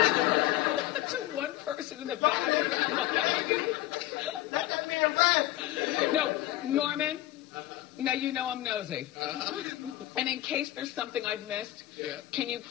To one person in the back in the corner. No, Norman, now you know I'm nosy. Uh-huh. And in case there's something I've missed, can you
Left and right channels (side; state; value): right; quieter; 15.8 dB